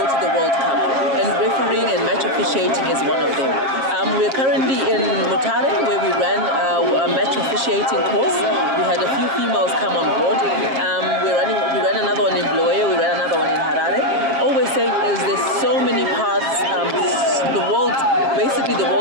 to the World Cup, and refereeing and match officiating is one of them. We're currently in Mutare, where we ran a match officiating course. We had a few females come on board. We ran another one in Bulawayo, we ran another one in Harare. Always saying is there's so many paths. Basically the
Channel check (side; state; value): left; late; 7.4 ms